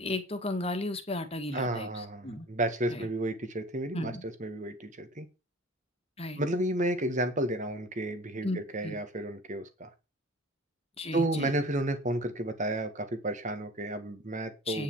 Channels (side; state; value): both; normal; correlation 0.43